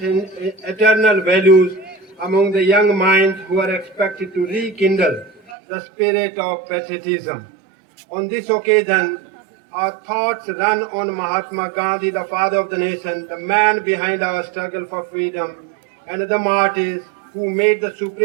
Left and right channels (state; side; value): drops out; left; at 5.6 s